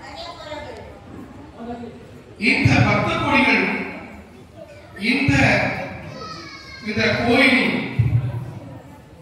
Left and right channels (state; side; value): identical; both; correlation 1.00